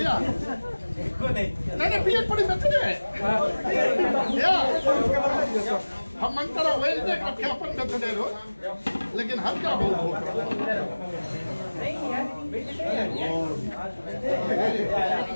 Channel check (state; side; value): inverted; both; correlation -1.00